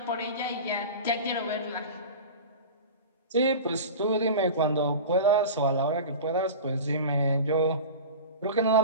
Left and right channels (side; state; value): both; inverted; correlation -0.31